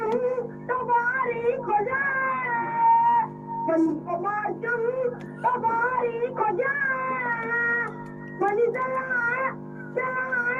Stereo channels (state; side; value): identical; both; correlation 1.00